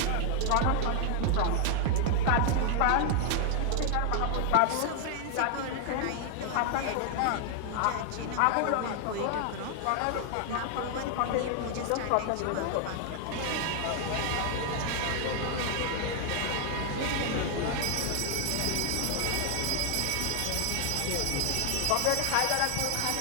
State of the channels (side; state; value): both; different; correlation 0.00